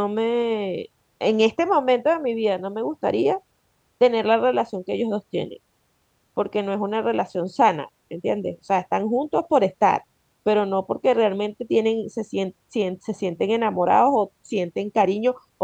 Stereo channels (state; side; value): identical; both; correlation 1.00